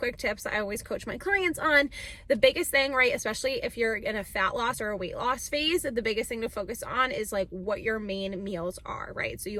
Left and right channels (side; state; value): both; identical; correlation 1.00